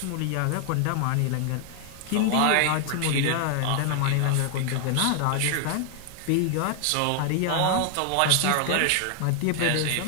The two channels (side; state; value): both; different; correlation 0.00